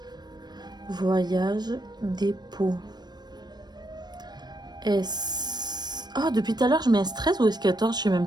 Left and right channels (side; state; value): left; late; 0.20 ms